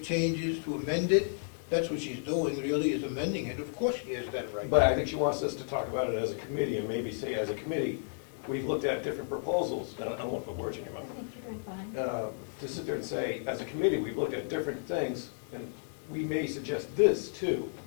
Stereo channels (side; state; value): right; silent; 56 dB below the other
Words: changes, to amend it. That's what she's doing, really, is amending it. Of course she has that right. But I think she wants us to talk about it as a committee, and maybe say, as a committee, we've looked at different proposals, and I don't want to put words in your I mouth. think you're doing fine. To sit there and say, as a committee, we've looked at different things, and we may suggest this too,